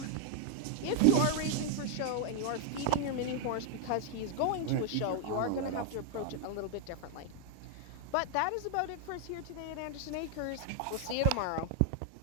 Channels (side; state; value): both; different; correlation 0.00